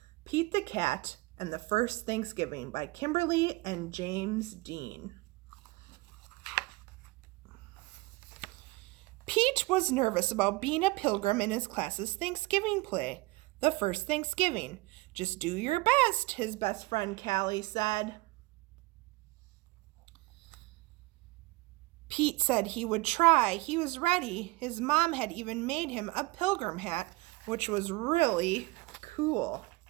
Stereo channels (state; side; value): quieter; left; 22.2 dB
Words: Pete the Cat and the First Thanksgiving by Kimberly and James Dean. Pete was nervous about being a pilgrim in his class's Thanksgiving play, the first Thanksgiving. Just do your best, his best friend Callie said. Pete said he would try. He was ready. His mom had even made him a pilgrim hat, which was really cool.